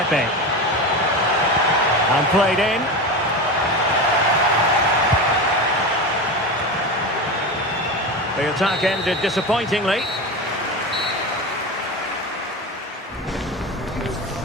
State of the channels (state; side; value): normal; both; correlation 0.23